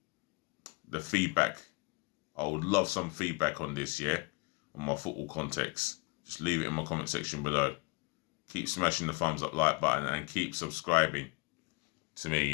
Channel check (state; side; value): quieter; right; 28.2 dB